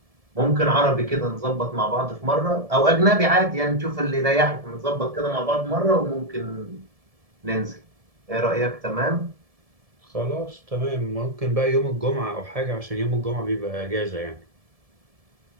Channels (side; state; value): left; late; 1.7 ms